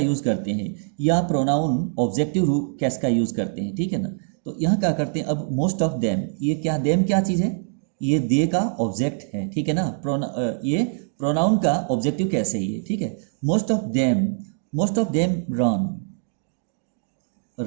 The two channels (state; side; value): silent; left; digital silence